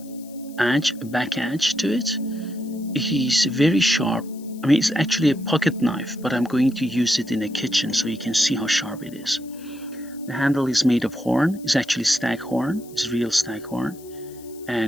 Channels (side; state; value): left; noise; hiss, 23 dB below the sound